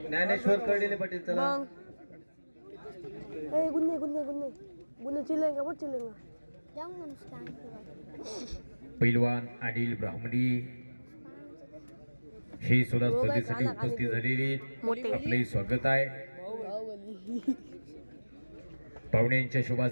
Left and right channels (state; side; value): inverted; both; correlation -1.00